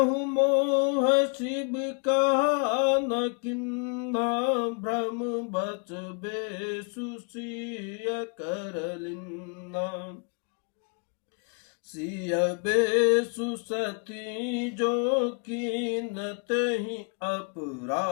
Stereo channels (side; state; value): right; quieter; 39.6 dB